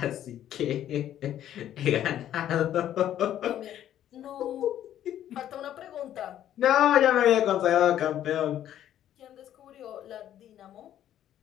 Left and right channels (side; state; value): right; quieter; 11.4 dB